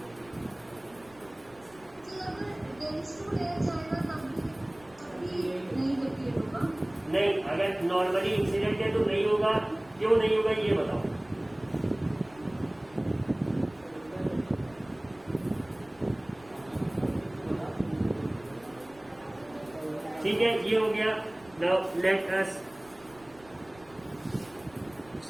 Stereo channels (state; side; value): noise; right; rumble, 26 dB below the sound